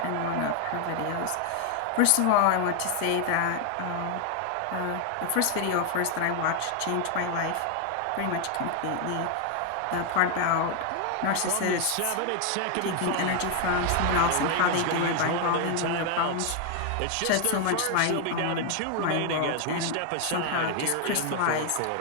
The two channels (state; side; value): different; both; correlation 0.00